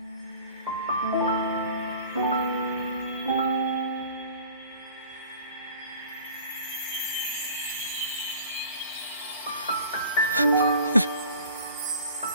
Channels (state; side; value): inverted; both; correlation -0.46